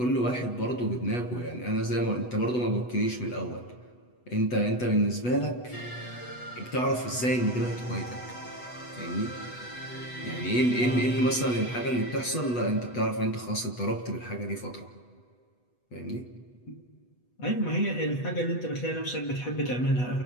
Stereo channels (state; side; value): late; right; 8.1 ms